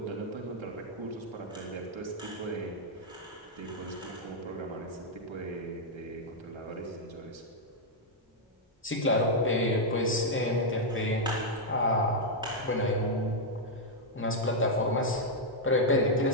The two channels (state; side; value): normal; both; correlation -0.03